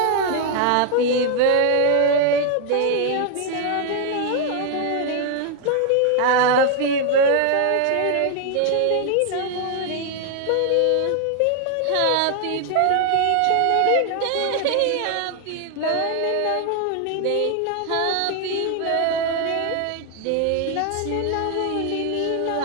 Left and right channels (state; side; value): different; both; correlation 0.00